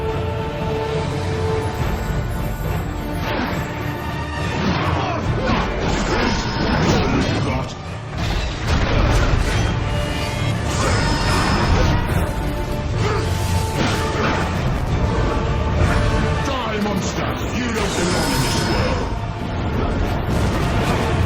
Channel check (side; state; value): both; identical; correlation 1.00